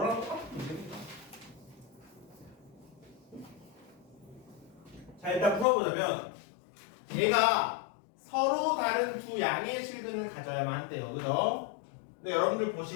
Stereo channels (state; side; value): drops out; right; at 5.7 s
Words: 똑같은 문제입니다. 자, 일단 풀어보자면 얘가 서로 다른 두 양의 실근을 가져야만 한대요. 그죠? 근데 여러분들